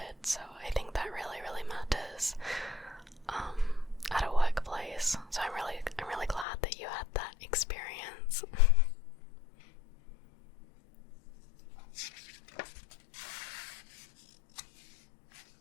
so I think that really matters, at a workplace, so I'm really glad that you had that experience.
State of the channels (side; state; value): right; drops out; at 6.5 s